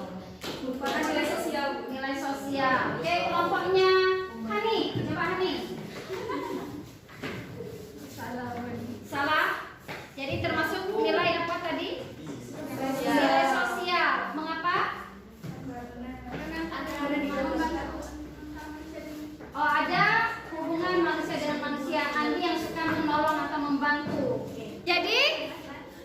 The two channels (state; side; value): identical; both; correlation 1.00